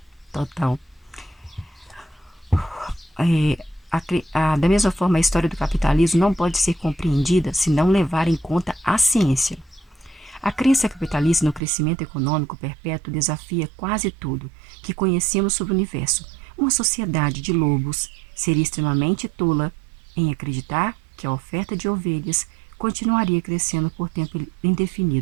Da mesma forma, a história do capitalismo não pode ser compreendida se não levar em conta a ciência. A crença capitalista no crescimento econômico perpétuo desafia quase tudo que conhecemos sobre o universo. Uma sociedade de lobos seria extremamente tola em acreditar que a oferta de ovelhas continuaria crescendo por tempo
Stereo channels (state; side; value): drops out; left; at 11.6 s